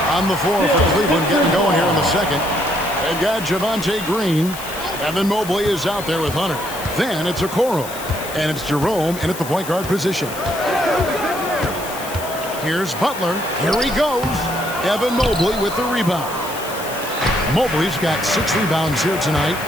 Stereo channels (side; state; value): left; noise; hiss, 12 dB below the sound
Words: On the floor for Cleveland, getting going here in the second. They've got Javonte Green. Evan Mobley is out there with Hunter. Then it's Okoro. And it's Jerome in at the point guard position. Here's Butler. Here he goes. Evan Mobley with the rebound. Mobley's got 6 rebounds here tonight.